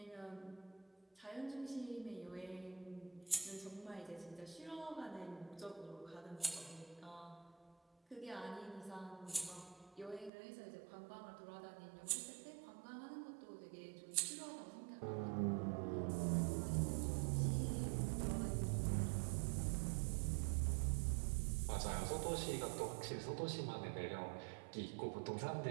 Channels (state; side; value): drops out; left; at 10.3 s